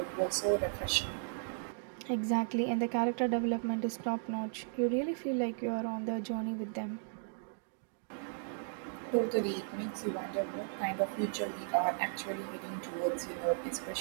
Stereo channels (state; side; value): silent; left; digital silence